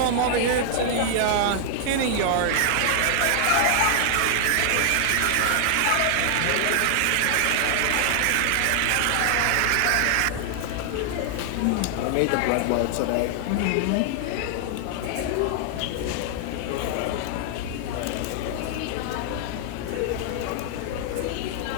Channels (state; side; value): different; both; correlation 0.00